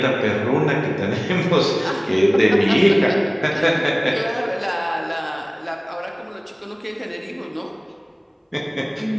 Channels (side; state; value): both; identical; correlation 1.00